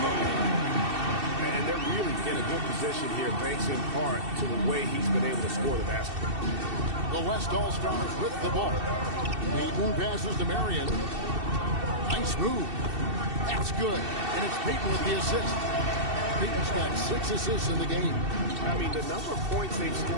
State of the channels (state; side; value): late; left; 2.7 ms